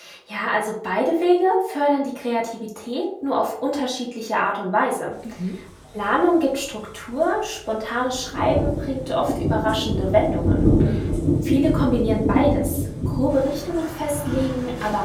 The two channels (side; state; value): both; identical; correlation 1.00